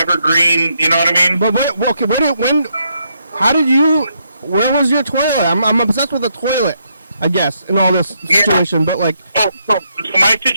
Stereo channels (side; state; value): both; inverted; correlation -0.77